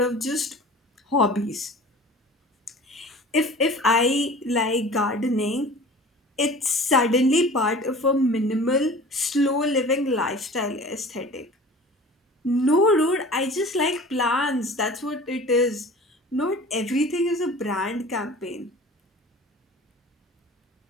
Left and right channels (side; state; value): both; normal; correlation 0.42